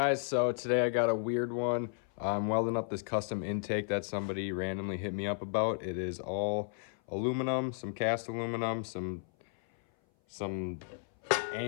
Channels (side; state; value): right; silent; 55 dB below the other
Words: So today I got a weird one. I'm welding up this custom intake that somebody randomly hit me up about. It is all aluminum, some cast aluminum, some